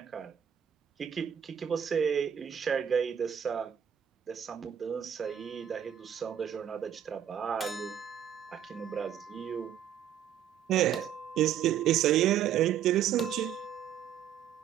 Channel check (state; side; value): quieter; left; 9.4 dB